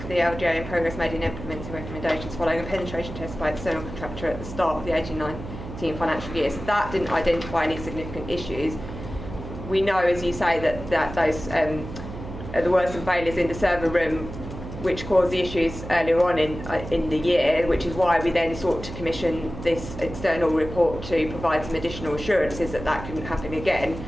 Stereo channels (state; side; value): noise; right; hum, 10 dB below the sound